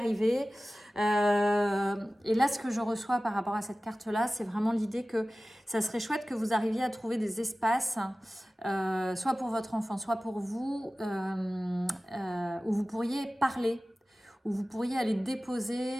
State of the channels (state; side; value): normal; both; correlation 0.97